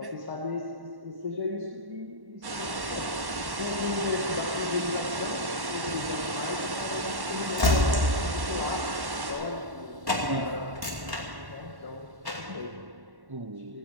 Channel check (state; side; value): late; left; 1.1 ms